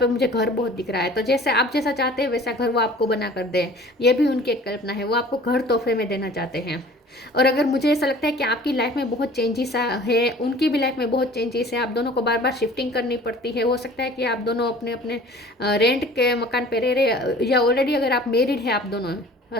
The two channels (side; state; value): both; normal; correlation 0.47